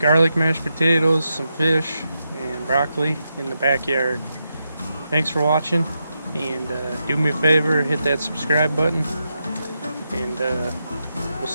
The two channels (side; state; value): both; inverted; correlation -0.85